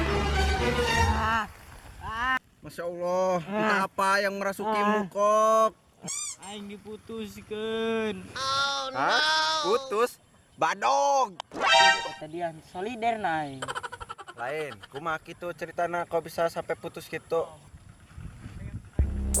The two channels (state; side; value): identical; both; correlation 1.00